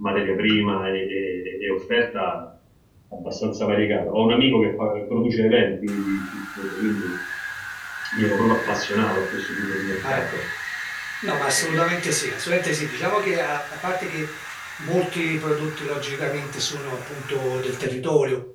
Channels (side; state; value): both; identical; correlation 1.00